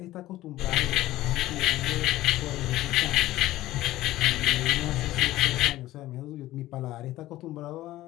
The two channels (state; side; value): quieter; right; 15.9 dB